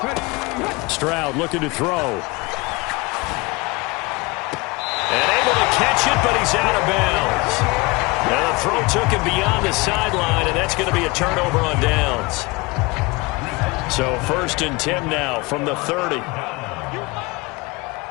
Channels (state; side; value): quieter; right; 25.1 dB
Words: Stroud looking to throw. And able to catch it, but he's out of bounds. Now the throw took him beyond the sideline, and that's going to be a turnover on downs. So 1st and 10 now from the 30.